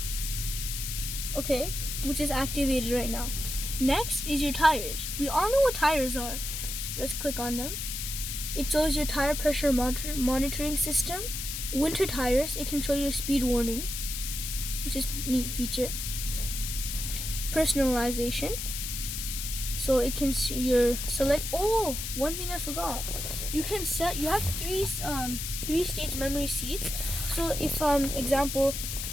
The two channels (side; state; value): left; noise; hiss, 5 dB below the sound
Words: Okay, which is activated right now. Next is your tires. We all know what tires are. Let's click on them. It shows your tire pressure monitoring system. Winter tires, it can show your speed warning, which is a neat feature. Personalization. So it can see your select. Oh, one thing I forgot. You can set. You have three stage memory seats. So if example,